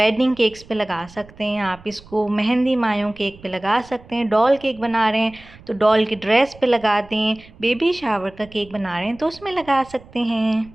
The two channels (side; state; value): right; noise; rumble, 22 dB below the sound